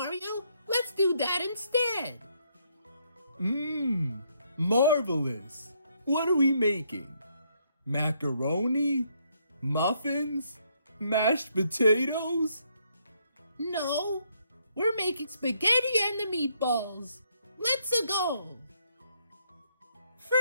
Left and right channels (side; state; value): both; inverted; correlation -0.72